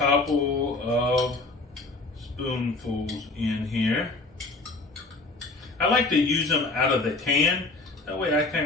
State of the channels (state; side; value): quieter; right; 3.2 dB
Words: of spoonfuls in here. I like to use them out of the can. That way I